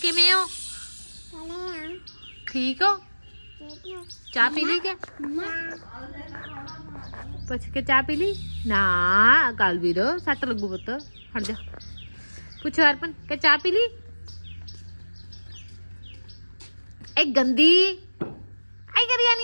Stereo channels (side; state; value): both; inverted; correlation -1.00